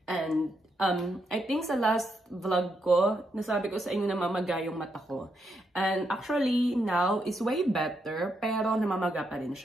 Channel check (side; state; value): both; normal; correlation 0.80